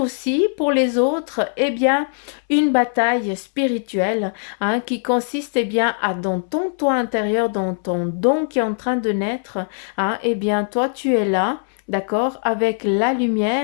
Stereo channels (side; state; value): right; silent; 61 dB below the other